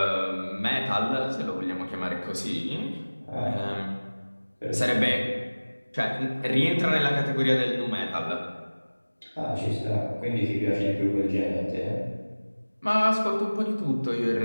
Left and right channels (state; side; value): inverted; both; correlation -1.00